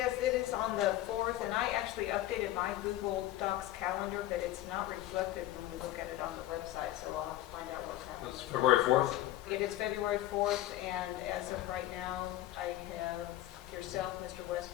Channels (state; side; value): quieter; right; 14.7 dB